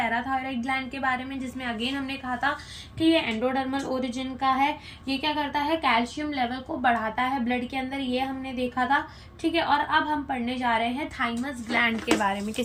ग्लैंड के बारे में, जिसमें अगेन हमने कहा था कि ये एंडोडर्मल ओरिजिन का है। ये क्या करता है, कैल्शियम लेवल को बढ़ाता है ब्लड के अंदर, ये हमने देखा था, ठीक है। और अब हम पढ़ने जा रहे हैं थाइमस ग्लैंड के बारे में।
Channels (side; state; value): both; identical; correlation 1.00